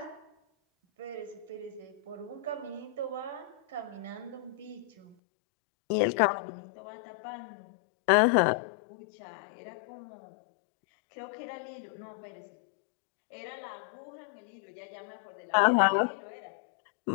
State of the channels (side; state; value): right; drops out; at 5.2 s